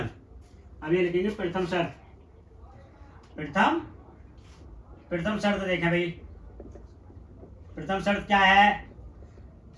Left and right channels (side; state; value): both; identical; correlation 1.00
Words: अब ये लिखेंगे प्रथम शर्त देखें भाई। प्रथम शर्त क्या है?